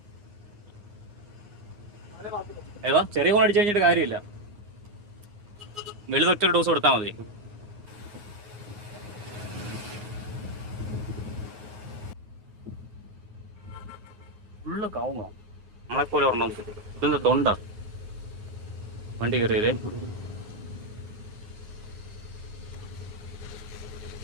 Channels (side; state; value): left; late; 9.5 ms